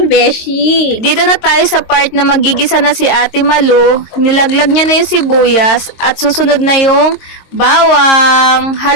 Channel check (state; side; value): late; right; 22 ms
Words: Vichy. Dito na tayo sa part na magigisa na si Ate Malu. Nilaglag niya na yung sibuyas at susunod na yung bawang.